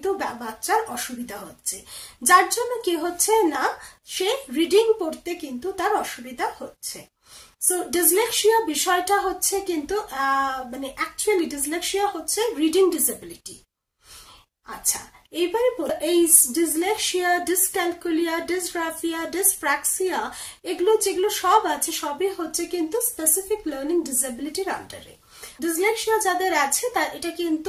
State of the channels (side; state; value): both; identical; correlation 1.00